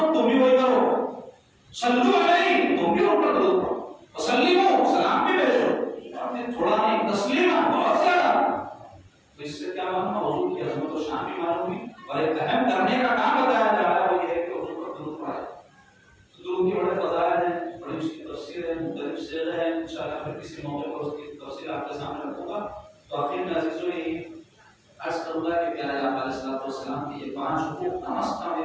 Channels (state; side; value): identical; both; correlation 1.00